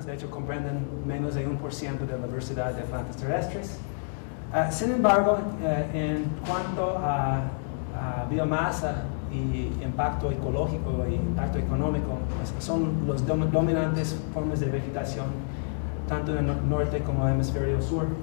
De hecho, comprenden menos de 1% de la diversidad de plantas terrestres. Sin embargo, en cuanto a biomasa y impacto ecológico y impacto económico, pues son los dominantes formas de vegetación, tanto en el norte como en el hemisferio sur.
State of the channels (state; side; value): silent; right; digital silence